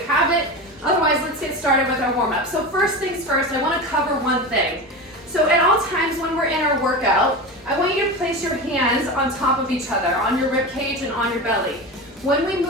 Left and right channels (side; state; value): both; normal; correlation 0.25